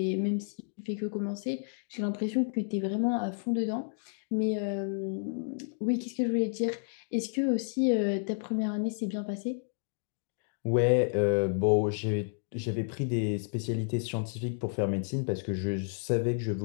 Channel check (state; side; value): silent; right; digital silence